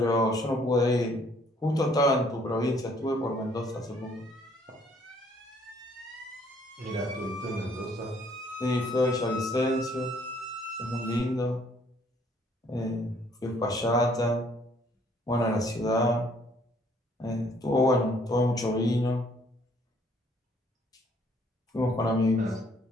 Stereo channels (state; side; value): normal; both; correlation 0.63